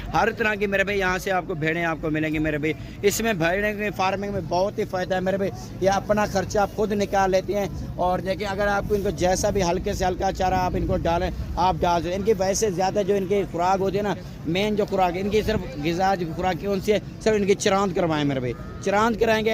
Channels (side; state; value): both; identical; correlation 1.00